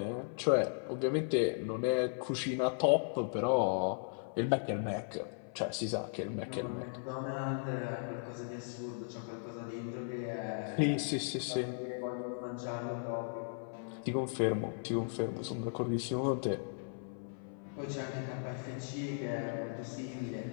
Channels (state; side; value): silent; right; 53 dB below the other